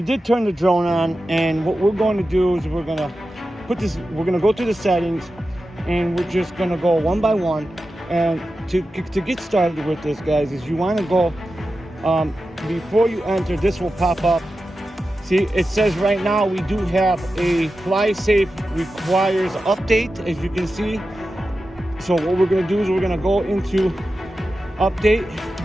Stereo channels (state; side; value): normal; both; correlation 0.92